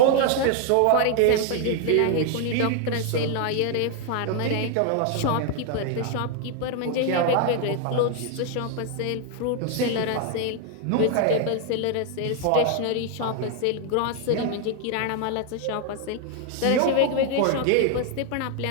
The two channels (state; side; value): different; both; correlation 0.00